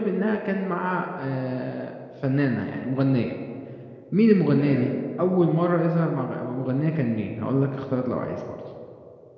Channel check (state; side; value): identical; both; correlation 1.00